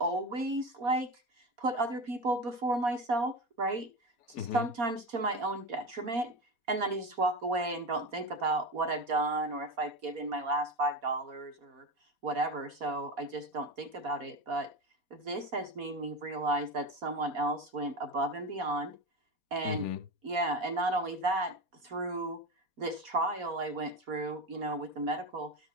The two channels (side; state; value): left; late; 4.2 ms